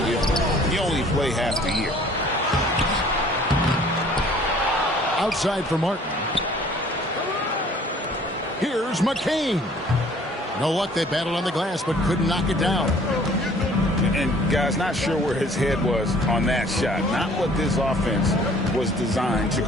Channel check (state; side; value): normal; both; correlation 0.54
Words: if you only play half the year? Outside for Martin. Here's McCain. No luck, they battled on the glass, but couldn't knock it down. And, guys, not sure where his head was on that shot. Not what this offense was designed to